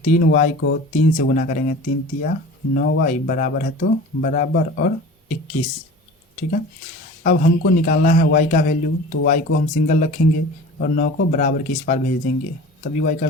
3y को 3 से गुना करेंगे, 3 तिया 9y बराबर है तो बराबर और 21, ठीक है। अब हमको निकालना है y का वैल्यू, तो y को हम सिंगल रखेंगे और 9 को बराबर के इस पार भेज देंगे तभी y का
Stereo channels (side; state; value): both; normal; correlation 0.39